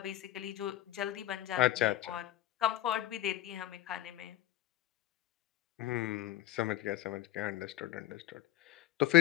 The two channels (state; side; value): quieter; right; 14.0 dB